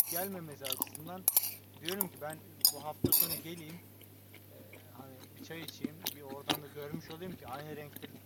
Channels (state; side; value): identical; both; correlation 1.00